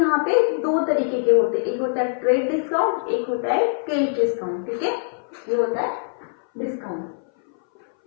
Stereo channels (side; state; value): right; silent; 60 dB below the other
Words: पे 2 तरीके के होते हैं। एक होता है ट्रेड डिस्काउंट, एक होता है कैश डिस्काउंट। ठीक है, ये होता है डिस्काउंट,